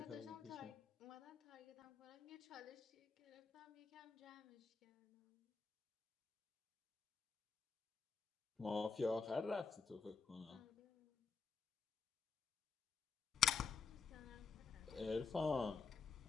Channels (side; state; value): right; quieter; 5.3 dB